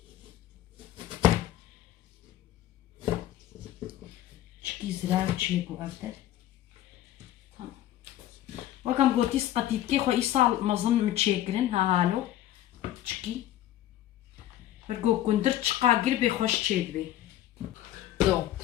چکی زرار چیگو افدر وكم قلتي سقطيت كي خو إيصال مظن متشاكرين ها هالو تشكي برقو كندر تشقا قربي خوش تشيدبي so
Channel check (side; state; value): right; quieter; 13.2 dB